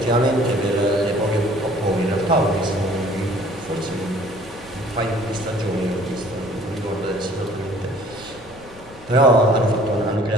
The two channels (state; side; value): noise; left; rumble, 22 dB below the sound